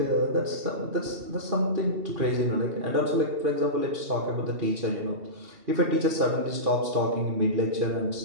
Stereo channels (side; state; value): left; late; 2.7 ms